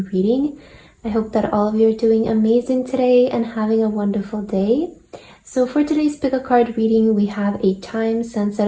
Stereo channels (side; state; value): both; identical; correlation 1.00